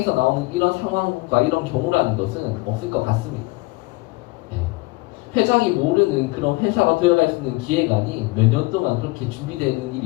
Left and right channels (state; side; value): quieter; right; 23.2 dB